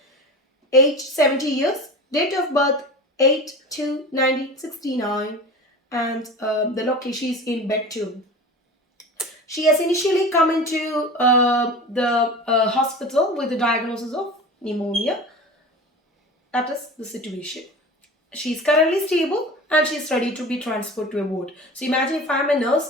age 70 years, date of birth 8/2/1969, and the location is in bed 2. She has initially come into the hospital with the diagnosis of pneumonia. That is the situation. She is currently stable and she is ready to be transferred to a ward. So imagine if I am a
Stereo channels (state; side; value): normal; both; correlation 0.34